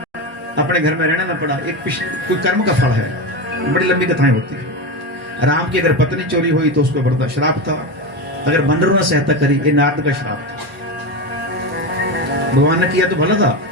अपने घर में रहना ना पड़ा, एक कोई कर्म का फल है। बड़ी लंबी कथाएं होती है। राम की अगर पत्नी चोरी हुई तो उसको बड़ा श्राप था। अगर बंदरों ने सहायता करी, ये नारद का श्राप था। भगवान ने किया तो भला था,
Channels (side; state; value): both; normal; correlation 0.18